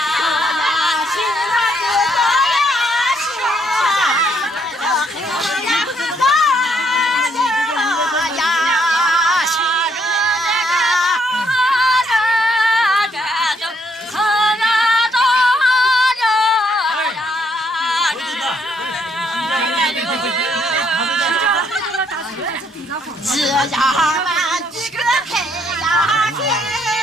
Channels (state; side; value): normal; both; correlation 0.71